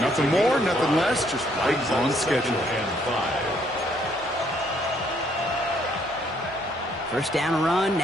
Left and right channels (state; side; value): normal; both; correlation 0.68